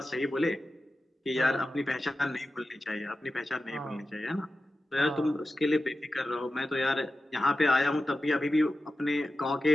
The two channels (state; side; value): normal; both; correlation 0.93